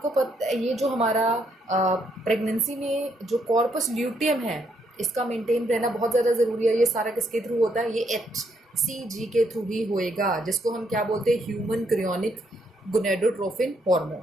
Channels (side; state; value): both; normal; correlation 0.74